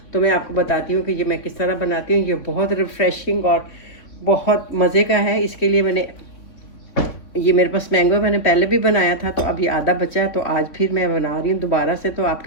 तो मैं आपको बताती हूँ कि ये मैं किस तरह बनाती हूँ। ये बहुत रिफ़्रेशिंग और बहुत मज़े का है। इसके लिए ये मेरे पास मैंगो मैंने पहले भी बनाया था, तो अभी आधा बचा है, तो आज फिर मैं बना रही हूँ दोबारा से। तो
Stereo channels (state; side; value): late; right; 3.6 ms